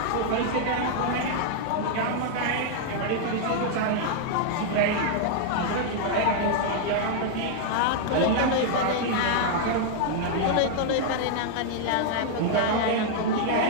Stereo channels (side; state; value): both; different; correlation -0.01